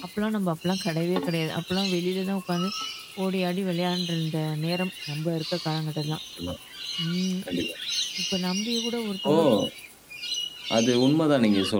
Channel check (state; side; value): identical; both; correlation 1.00